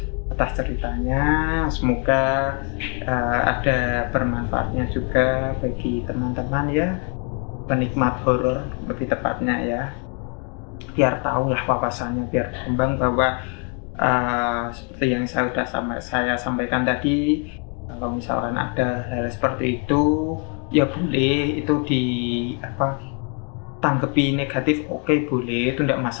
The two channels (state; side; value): quieter; right; 38.6 dB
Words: atas ceritanya. Semoga ada bermanfaatnya juga bagi teman-teman ya, penikmat horor lebih tepatnya ya. Biar tahu lah wawasannya, biar berkembang bahwa seperti yang saya sampaikan tadi, kalau misalkan ada hal seperti itu ya boleh itu tanggapi negatif, oke boleh, itu tidak